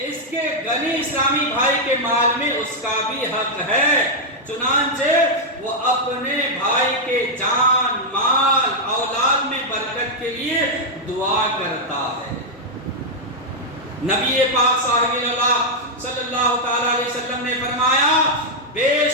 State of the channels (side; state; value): both; normal; correlation -0.02